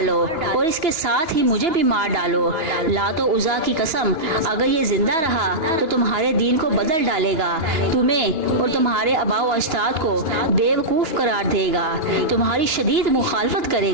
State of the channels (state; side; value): late; left; 2.9 ms